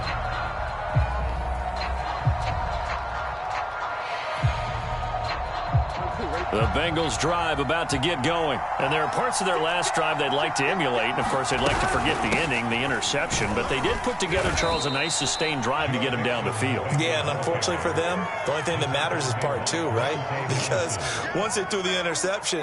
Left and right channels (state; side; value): identical; both; correlation 1.00